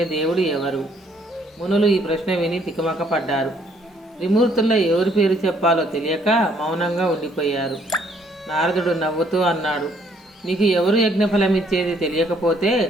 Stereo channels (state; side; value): normal; both; correlation 0.65